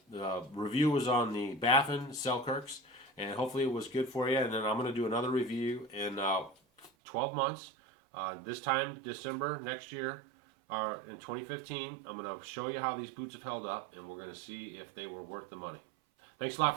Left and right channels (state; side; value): drops out; left; at 6.9 s